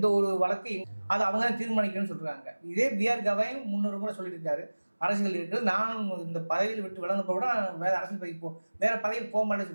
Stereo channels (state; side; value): inverted; both; correlation -1.00